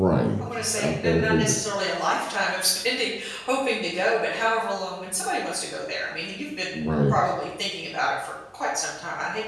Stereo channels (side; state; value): both; identical; correlation 1.00